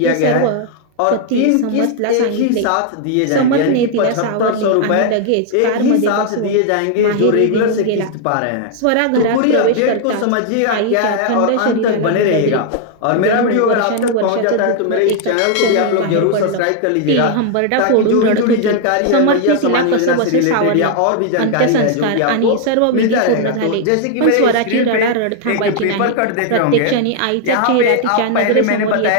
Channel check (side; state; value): both; different; correlation 0.00